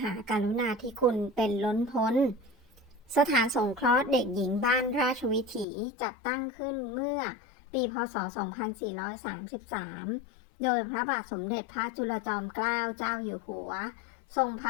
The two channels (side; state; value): right; drops out; at 5.7 s